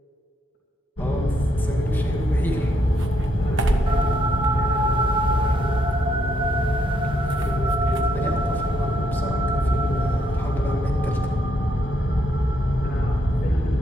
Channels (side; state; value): both; normal; correlation 0.75